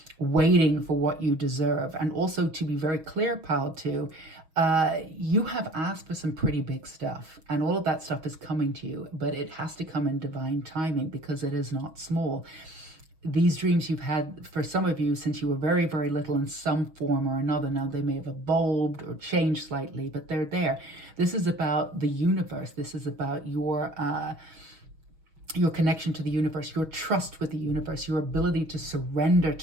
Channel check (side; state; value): left; late; 6.3 ms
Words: waiting for what you deserve. And also, to be very clear, pal, too, you have asked for some pretty big stuff, and all of that stuff is coming to you, but it has to come in divine timing, because it is not small. These dreams you've had, for some of you, since you were very, very little in some form or another. Now, they may have evolved or changed slightly, but they're there. This is about the universe. This is about your connection to the universe, your trust with the universe, your ability to surrender